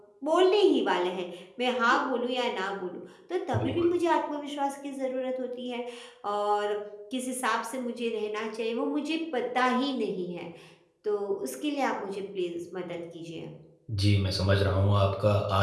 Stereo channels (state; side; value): identical; both; correlation 1.00